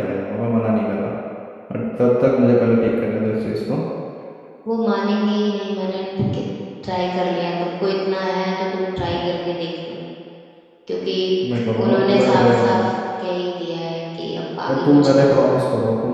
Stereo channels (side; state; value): both; identical; correlation 1.00